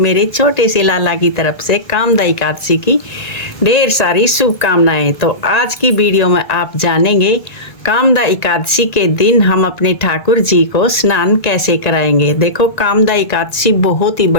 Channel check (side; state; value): right; late; 1.9 ms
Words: छोटे से लाला की तरफ से कामदा एकादशी की ढेर सारी शुभकामनाएं। तो आज की वीडियो में आप जानेंगे कामदा एकादशी के दिन हम अपने ठाकुर जी को स्नान कैसे कराएंगे। देखो कामदा एकादशी बहुत ही